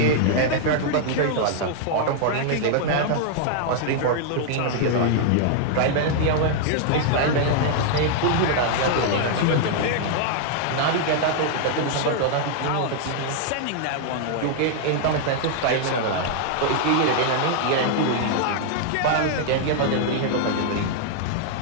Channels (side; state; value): both; different; correlation 0.00